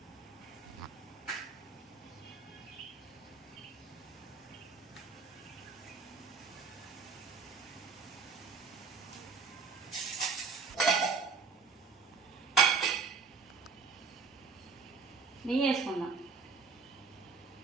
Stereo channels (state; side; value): quieter; left; 5.1 dB